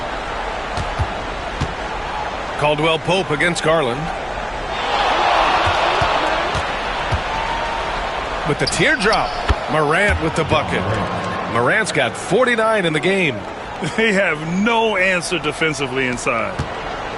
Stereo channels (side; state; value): both; identical; correlation 1.00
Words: Caldwell Pope against Garland. With the teardrop. Morant with the bucket. Morant's got 49 in the game. They have no answer defensively inside.